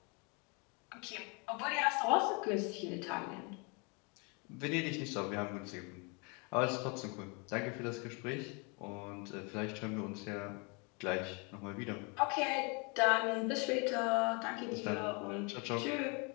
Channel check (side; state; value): right; quieter; 32.0 dB